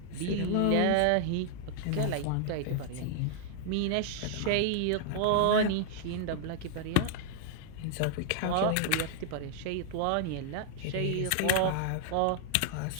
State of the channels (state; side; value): different; both; correlation -0.01